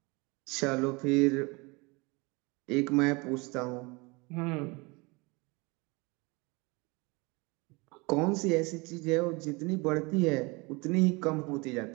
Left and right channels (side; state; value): left; quieter; 26.8 dB